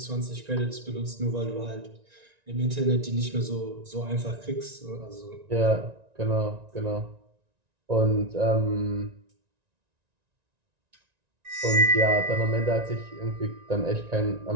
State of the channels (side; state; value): left; late; 1.9 ms